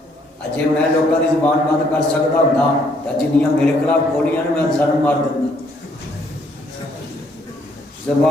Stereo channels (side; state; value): both; normal; correlation 0.67